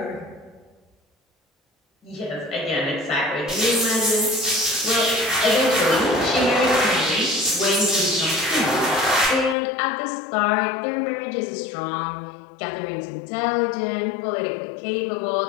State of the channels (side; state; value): right; drops out; at 9.6 s